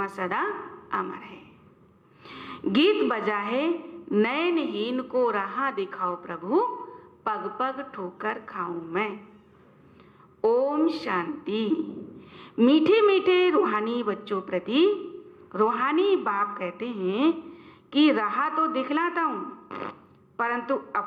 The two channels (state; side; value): identical; both; correlation 1.00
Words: सदा अमर है। गीत बजा है, नयनहीन को राह दिखाओ प्रभु, पग पग ठोकर खाऊं मैं। ओम शांति। मीठे मीठे रूहानी बच्चों प्रति रूहानी बाप कहते हैं कि राह तो दिखलाता हूं, परंतु